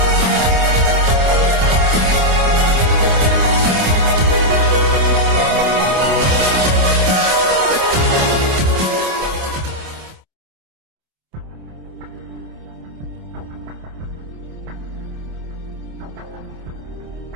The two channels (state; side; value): late; left; 27 ms